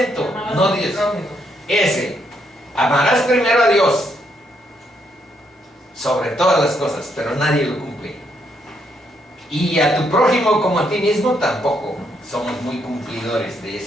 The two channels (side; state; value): both; normal; correlation 0.75